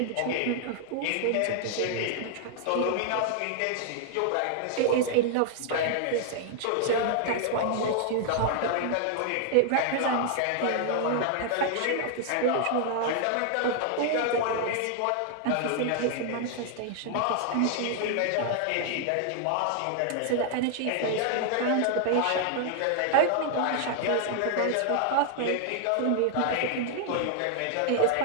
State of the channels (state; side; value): different; both; correlation 0.00